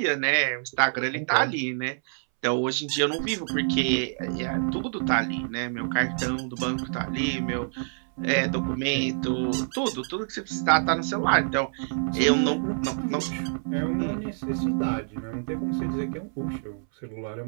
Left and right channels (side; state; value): left; silent; 60 dB below the other